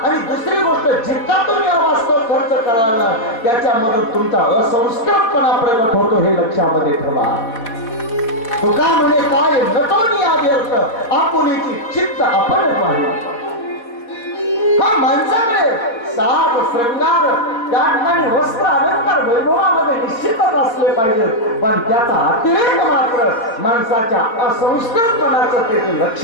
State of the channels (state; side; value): late; right; 4.2 ms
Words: आणि दुसरी गोष्ट, जितका तुम्ही अवास्तव खर्च कराल ना त्याच्यामधून तुमचा असंस्कृतपणा प्रगट होतो, हे लक्षामध्ये ठेवा. तुका म्हणे काय नटोनी व्यर्थ, आपुलीची चित्त आपण पाहिजे. माणसाकडे साज श्रृंगार त्या ठिकाणी वस्त्र अलंकार वैभवामध्ये निश्चितच असले पाहिजेत, पण त्याचा अतिरेक मात्र माणसाच्या असंस्कृतपणाचं ते